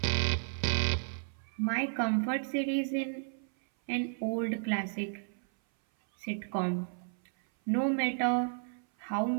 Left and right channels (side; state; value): left; silent; 56 dB below the other